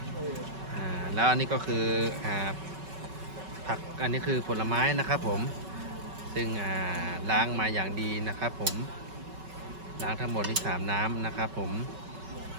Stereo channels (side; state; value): left; late; 5.3 ms